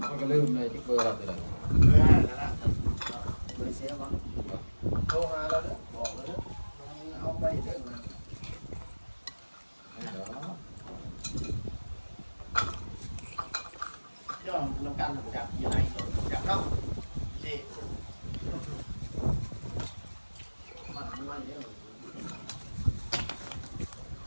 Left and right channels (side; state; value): both; inverted; correlation -1.00